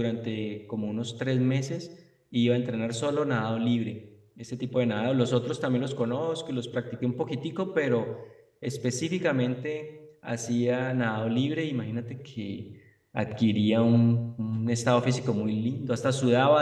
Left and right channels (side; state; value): both; identical; correlation 1.00